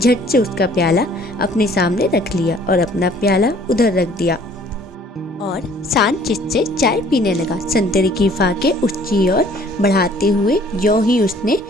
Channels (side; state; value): both; normal; correlation 0.56